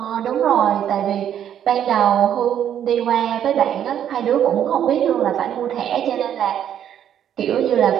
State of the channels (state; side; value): quieter; left; 9.9 dB